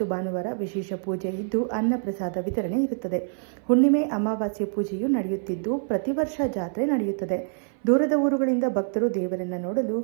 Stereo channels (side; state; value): left; silent; 57 dB below the other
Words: ಭಾನುವಾರ ವಿಶೇಷ ಪೂಜೆ ಇದ್ದು ಅನ್ನಪ್ರಸಾದ ವಿತರಣೆ ಇರುತ್ತದೆ. ಹುಣ್ಣಿಮೆ, ಅಮಾವಾಸ್ಯೆ ಪೂಜೆಯೂ ನಡೆಯುತ್ತಿದ್ದು ಪ್ರತಿ ವರ್ಷ ಜಾತ್ರೆ ನಡೆಯುತ್ತದೆ. ದೂರದ ಊರುಗಳಿಂದ ಭಕ್ತರು ದೇವರನ್ನು ನೋಡಲು